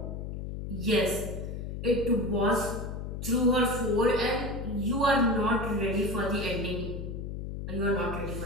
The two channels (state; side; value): noise; left; hum, 6 dB below the sound